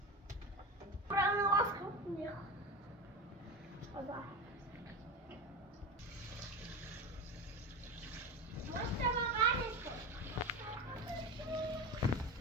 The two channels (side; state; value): both; normal; correlation 0.24